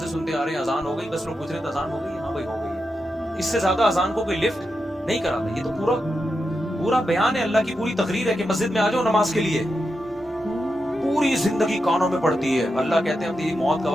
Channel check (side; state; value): both; normal; correlation 0.87